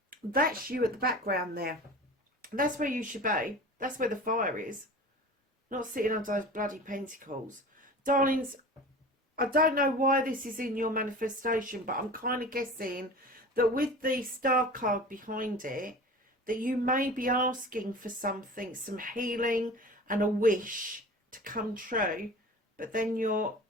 That's you at the background there. That's where you should be. That's where the fire is. Not sitting under those bloody pentacles. Darlings, I don't know why this is in your manifestation, but I'm kind of guessing that with the star card behind it, that you may be asking for something, some healing and a wish to come true, but then you're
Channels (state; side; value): normal; both; correlation 0.37